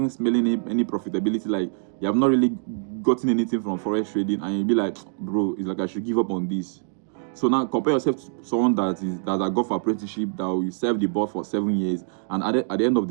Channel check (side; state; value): left; silent; digital silence